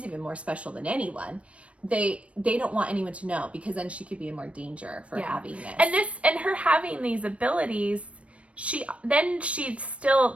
even more special than anyone. They don't want anyone to know, because then she could be in more danger for having this. And her having these abilities,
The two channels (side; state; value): left; late; 0.062 ms